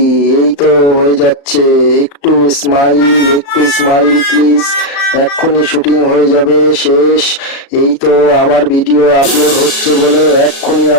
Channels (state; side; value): late; right; 36 ms